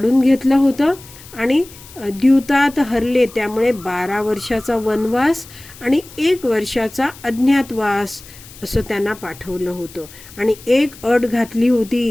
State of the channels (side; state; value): left; noise; hiss, 20 dB below the sound